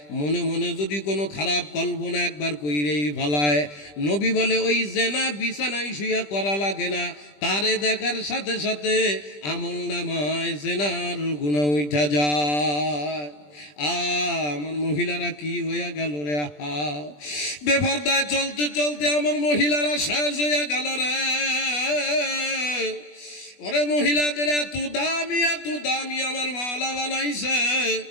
মনে মনে যদি কোনো খারাপ কল্পনা একবার কইরেই ফেলায়, নবী বলে ওই জেনা বিছানায় শুয়া করা লাগে না, তারে দেখার সাথে সাথে আমল নামায় জেনার গুনাহ উঠা যায়। আমার মহিলারা কি হইয়া গেল রে, আহা, বেপরদায় চলতে চলতে আমার মহিলারা শেষ হইয়া গেল রে। ওরে মহিলাদের এত দামি আমার মাওলা বানাইছে।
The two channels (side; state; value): right; late; 20 ms